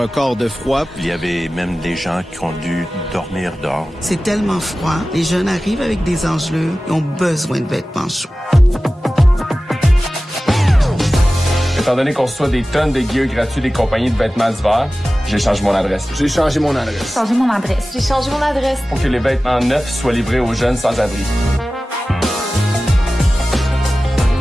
de froid. Il y avait même des gens qui ont dû dormir dehors. C'est tellement froid. Les jeunes arrivent avec des engelures et ont besoin de vêtements chauds. Étant donné qu'on reçoit des tonnes de gear gratuits des compagnies de vêtements d'hiver, j'ai changé mon adresse. J'ai changé mon adresse. Changé mon adresse. J'ai changé mon adresse. Pour que les vêtements neufs soient livrés aux jeunes sans-abri.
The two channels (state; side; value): normal; both; correlation 0.96